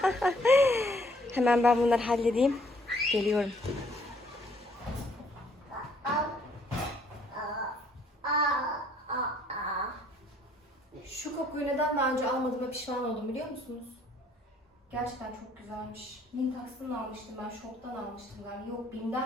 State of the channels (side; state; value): both; normal; correlation 0.63